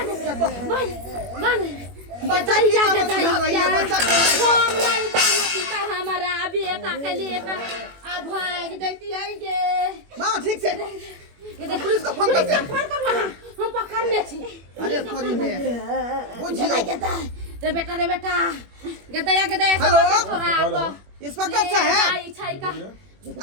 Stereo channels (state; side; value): late; left; 21 ms